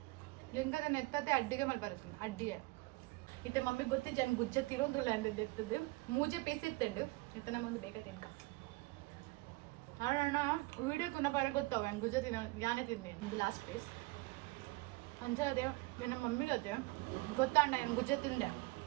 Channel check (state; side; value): quieter; left; 23.7 dB